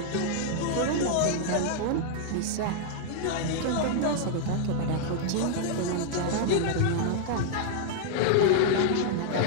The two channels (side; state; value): both; different; correlation -0.01